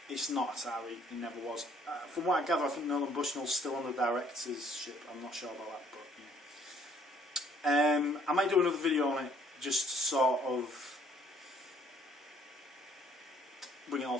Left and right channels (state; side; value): normal; both; correlation 0.62